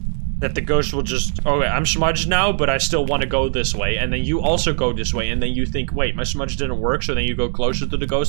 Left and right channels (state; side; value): silent; left; digital silence